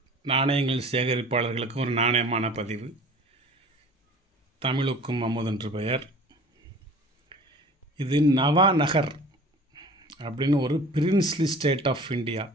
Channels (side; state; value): both; normal; correlation 0.44